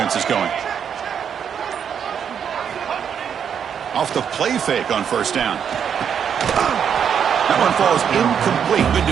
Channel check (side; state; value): left; quieter; 7.8 dB